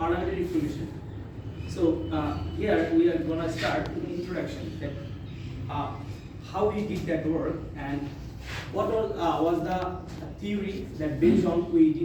reformation. So here we are going to start with the introduction, that how we did that work and what was the theory that based on we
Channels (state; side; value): identical; both; correlation 1.00